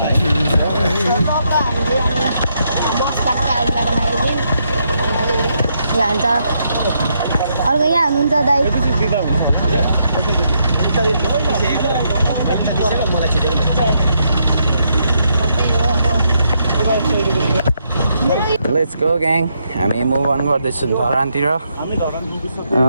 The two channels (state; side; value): inverted; both; correlation -0.77